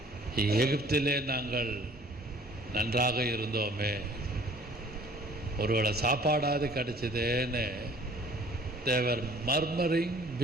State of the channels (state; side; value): normal; both; correlation 0.53